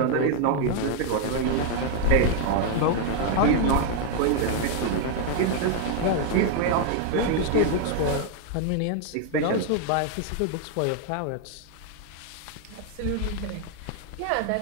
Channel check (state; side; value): different; both; correlation 0.00